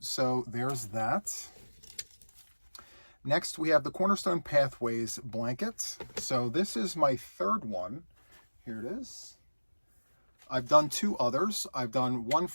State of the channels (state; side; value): inverted; both; correlation -1.00